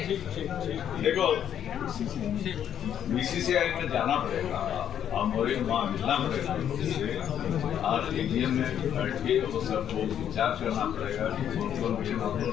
देखो, बीसीसीआई में जाना पड़ेगा और मोरे वहाँ मिलना पड़ेगा उससे। आज एटीएम में बैठ के वो सबको विचार करना पड़ेगा कि कौन गेम हम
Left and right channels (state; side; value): quieter; right; 9.6 dB